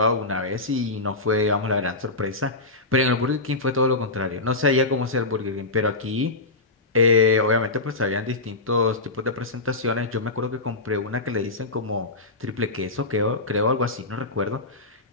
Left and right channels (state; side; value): quieter; right; 3.2 dB